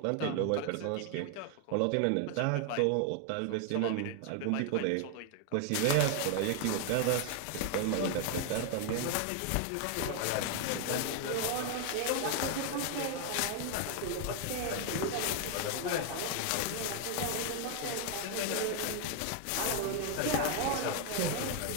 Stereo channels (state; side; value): different; both; correlation 0.00